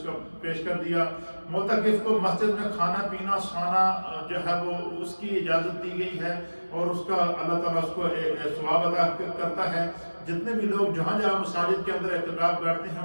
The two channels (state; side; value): inverted; both; correlation -1.00